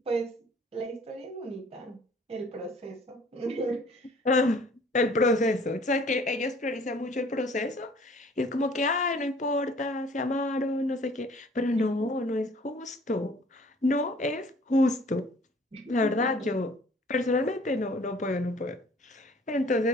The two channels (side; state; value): both; normal; correlation 0.54